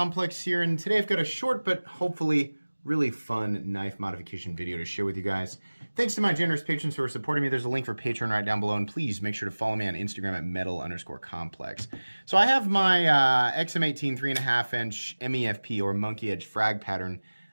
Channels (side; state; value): both; inverted; correlation -1.00